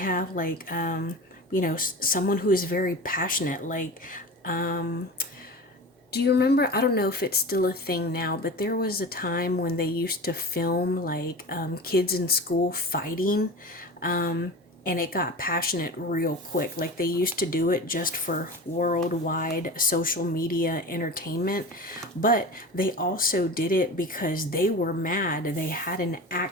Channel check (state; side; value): normal; both; correlation 0.32